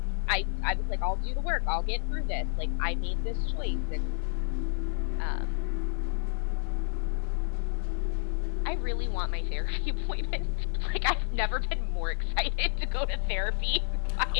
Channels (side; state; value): right; silent; digital silence